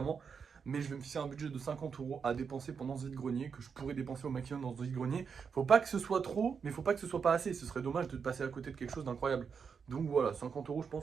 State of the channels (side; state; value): left; quieter; 6.1 dB